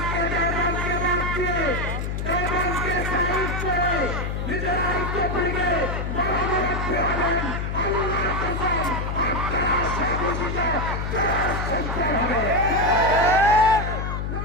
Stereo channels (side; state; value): left; noise; hum, 3 dB below the sound